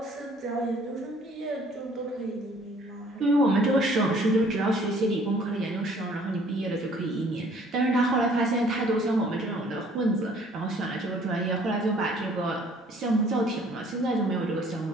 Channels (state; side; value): normal; both; correlation 0.57